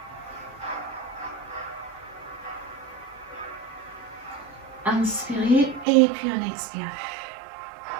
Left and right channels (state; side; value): drops out; left; at 5.9 s